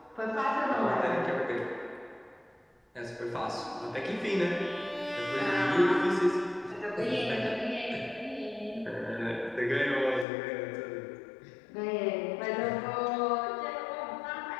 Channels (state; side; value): drops out; right; at 10.2 s